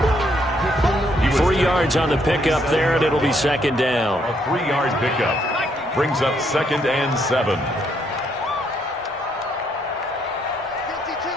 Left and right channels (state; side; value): normal; both; correlation 0.72